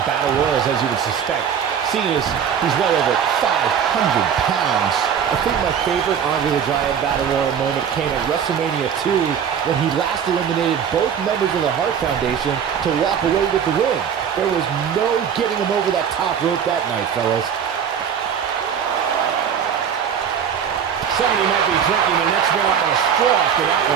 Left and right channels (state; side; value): quieter; left; 8.0 dB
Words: battle royals, as you would suspect. Seeing as he's well over 500 pounds. I think my favorite Andre the Giant Battle Royal moment came at WrestleMania 2 when he last eliminated both members of the Hart Foundation to walk away with the win. There was no getting him over that top rope that night, fellas. Somebody might be drinking the next meal out of a straw after that